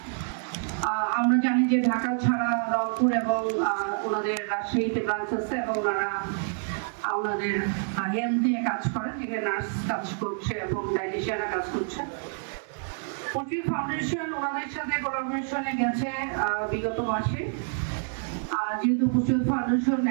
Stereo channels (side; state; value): left; silent; 60 dB below the other